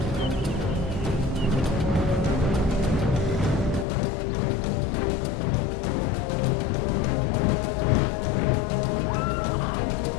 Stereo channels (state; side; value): drops out; right; at 3.9 s